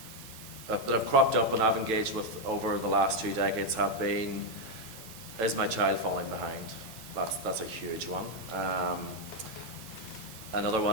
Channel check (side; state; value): both; normal; correlation 0.03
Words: have cropped up and I've engaged with over the last 2 decades have been, is my child falling behind? That's a huge one. Another